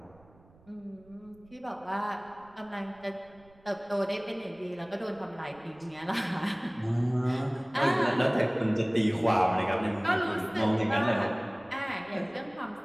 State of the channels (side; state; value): right; noise; rumble, 27 dB below the sound